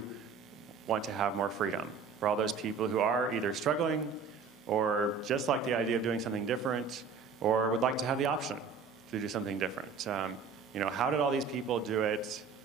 want to have more freedom. For all those people who are either struggling or just like the idea of doing something different or would like to have the option to do something different. How did all these people do it?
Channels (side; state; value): left; quieter; 5.3 dB